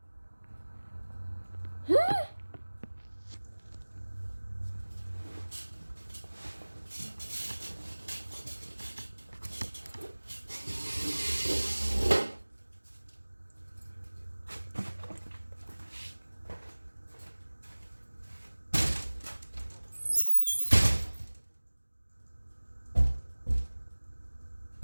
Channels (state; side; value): inverted; both; correlation -1.00